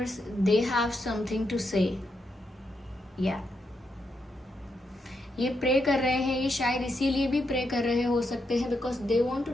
they have something to say. या ये प्रे कर रहे हैं, ये शायद इसीलिए भी प्रे कर रहे हो सकते हैं because they want to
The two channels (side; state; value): both; normal; correlation 0.82